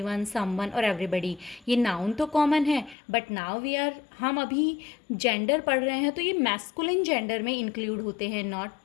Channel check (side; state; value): right; drops out; at 3.0 s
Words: समवन और एवरीबडी, ये नाउन तो कॉमन है बट नाउ हम अभी जेंडर पढ़ रहे हैं तो ये मैस्कुलिन जेंडर में इंक्लूड होते हैं.